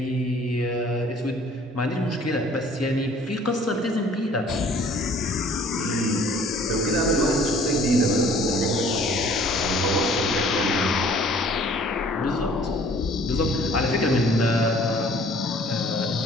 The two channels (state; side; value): normal; both; correlation 0.54